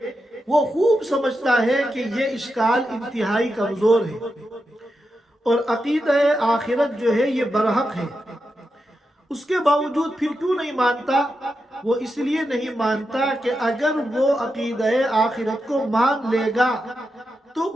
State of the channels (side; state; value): both; normal; correlation 0.87